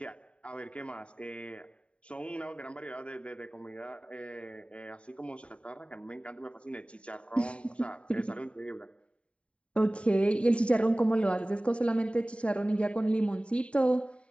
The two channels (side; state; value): right; late; 0.060 ms